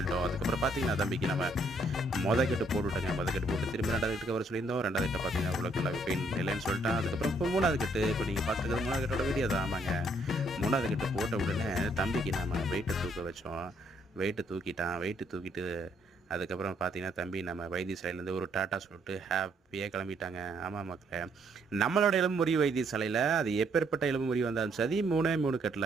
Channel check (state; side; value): normal; both; correlation 0.69